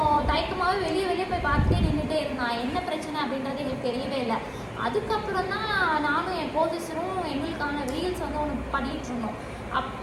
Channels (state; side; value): identical; both; correlation 1.00